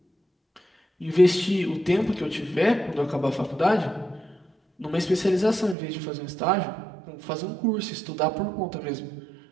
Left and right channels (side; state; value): left; drops out; at 5.8 s